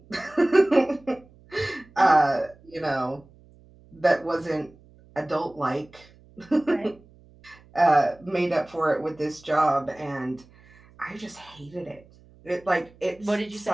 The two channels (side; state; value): right; noise; hum, 27 dB below the sound